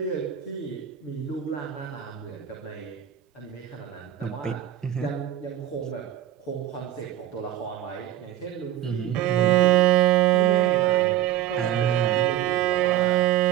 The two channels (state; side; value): quieter; left; 12.5 dB